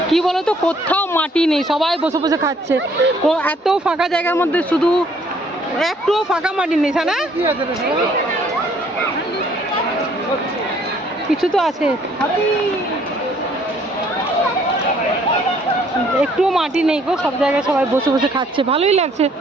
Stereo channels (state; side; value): normal; both; correlation 0.62